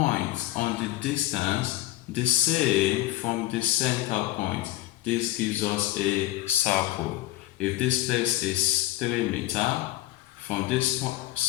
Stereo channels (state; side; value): quieter; right; 16.2 dB